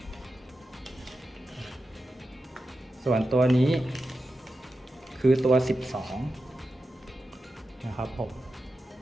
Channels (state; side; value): normal; both; correlation 0.91